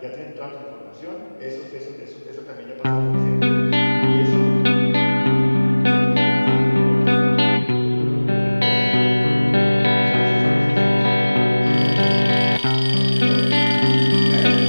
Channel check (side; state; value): both; inverted; correlation -1.00